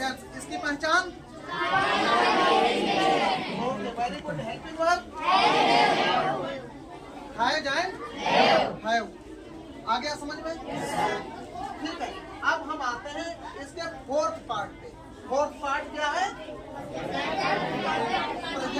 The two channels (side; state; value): both; identical; correlation 1.00